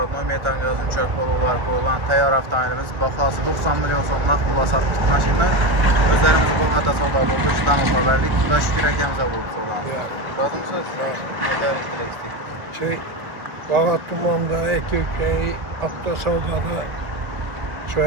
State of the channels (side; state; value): left; late; 1.9 ms